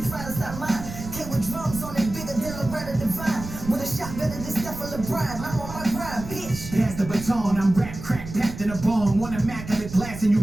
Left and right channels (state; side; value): noise; right; rumble, 11 dB below the sound